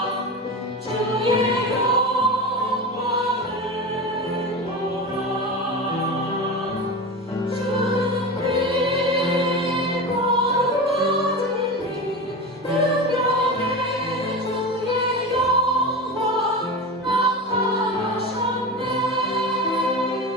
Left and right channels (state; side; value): normal; both; correlation 0.26